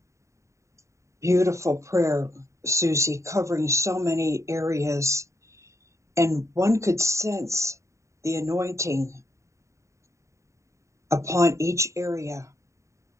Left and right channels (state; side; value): late; left; 0.14 ms